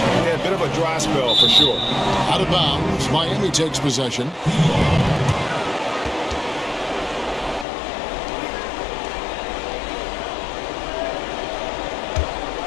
a bit of a dry spell for sure. Out of bounds. Miami takes possession.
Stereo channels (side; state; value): right; drops out; at 7.7 s